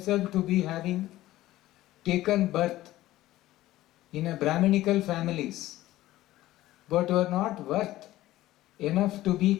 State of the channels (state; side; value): quieter; right; 15.7 dB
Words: to be having taken birth in a Brahminical families, but who are not worth enough to be